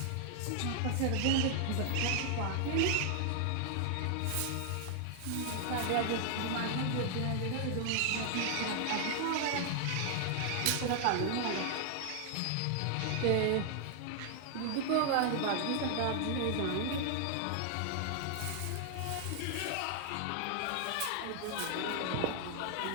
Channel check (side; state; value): both; different; correlation 0.00